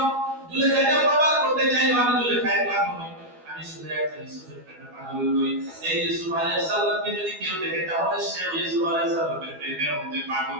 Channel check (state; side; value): late; left; 12 ms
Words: জুলেখা এটা প্রমাণ করতে চাইলো, আমি জুলেখায় পাগল নই, আমি শুধু একটা ইউসুফের প্রেমে পাগল নই। এই ইউসুফ আলাইহিস সালামকে যদি কেউ দেখে তাহলে সে ইউসুফ আলাইহিস সালামের প্রেমের মধ্যে পাগল